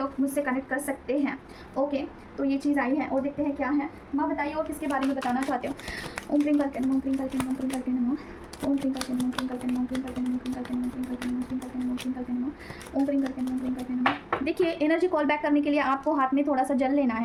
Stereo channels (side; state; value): both; identical; correlation 1.00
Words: मुझसे कनेक्ट कर सकते हैं, ओके। तो ये चीज़ आई है और देखते हैं क्या है। माँ बताइए और किसके बारे में बताना चाहते हो। ओम क्रीम करके नमो, क्रीम करके नमो, क्रीम करके नमो, ओम क्रीम करके नमो, क्रीम करके नमो, क्रीम करके नमो, क्रीम करके नमो, क्रीम करके नमो, क्रीम करके नमो, क्रीम करके नमो, ओम क्रीम करके नमो, क्रीम करके नमो। देखिए एनर्जी कॉल बैक करने के लिए आपको हाथ में थोड़ा सा जल लेना